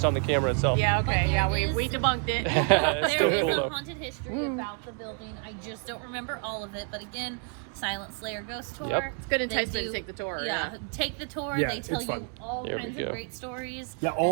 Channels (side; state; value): left; quieter; 39.8 dB